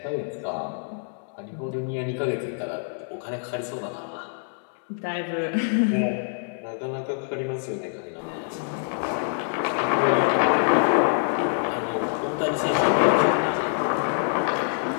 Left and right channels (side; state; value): right; silent; digital silence